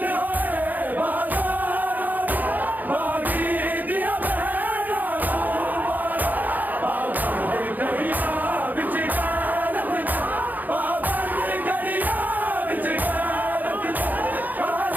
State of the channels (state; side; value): late; left; 0.083 ms